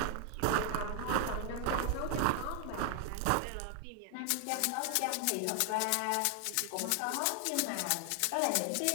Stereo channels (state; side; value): different; both; correlation 0.00